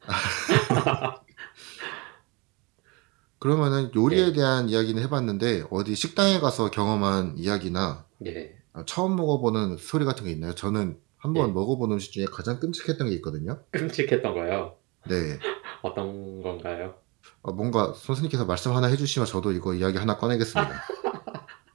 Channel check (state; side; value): quieter; left; 27.4 dB